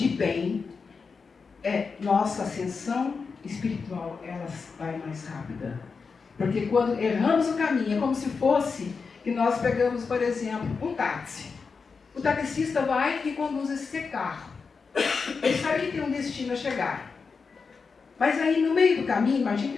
bem, nossa ascensão espiritual ela vai mais rápida. Porque quando erramos o caminho, é como se fosse que nós pegamos, por exemplo, um táxi. O taxista vai e conduz esse carro. Ele sabe que tem um destino a chegar. Mas aí, no meio do caminho, imagina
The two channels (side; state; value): right; quieter; 5.1 dB